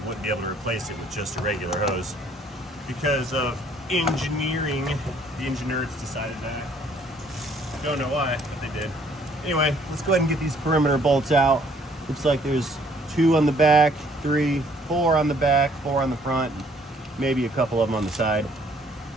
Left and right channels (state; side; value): normal; both; correlation 0.62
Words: be able to replace it with just a regular hose. Because of engineering, the engineers decided that. Don't know why, but they did. Anyway, let's go ahead and get these perimeter bolts out. Looks like there's 2 on the back, 3, 4 on the back, 4 on the front, maybe a couple of them on the side.